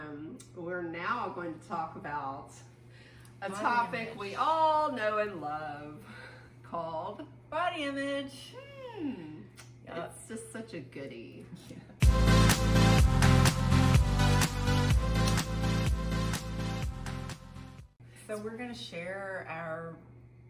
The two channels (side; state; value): both; identical; correlation 1.00